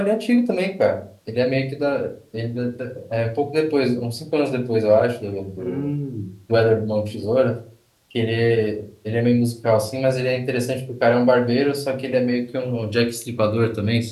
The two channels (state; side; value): identical; both; correlation 1.00